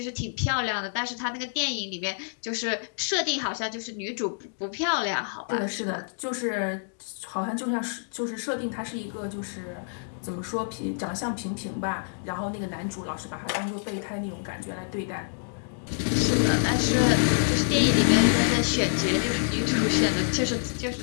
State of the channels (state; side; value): silent; right; digital silence